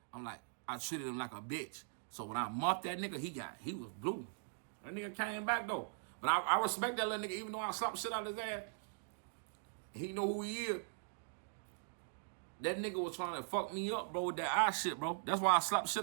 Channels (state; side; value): silent; left; digital silence